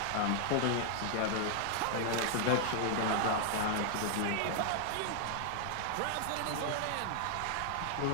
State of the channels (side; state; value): both; different; correlation 0.00